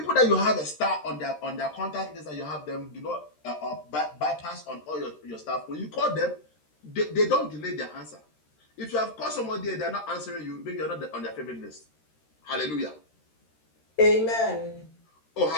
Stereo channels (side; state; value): right; late; 13 ms